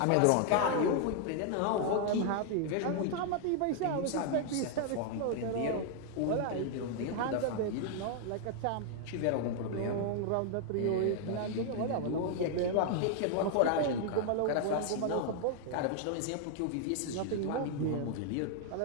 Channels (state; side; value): different; both; correlation 0.00